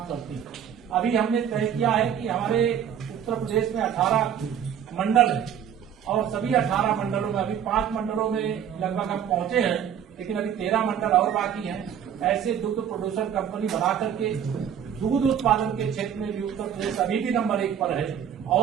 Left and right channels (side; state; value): left; quieter; 8.9 dB